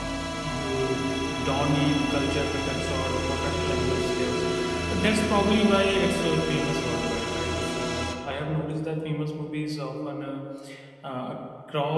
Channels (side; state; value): both; identical; correlation 1.00